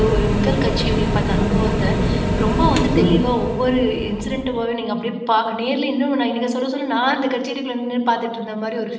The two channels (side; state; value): both; identical; correlation 1.00